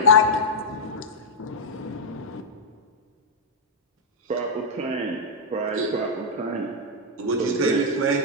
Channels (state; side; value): normal; both; correlation -0.05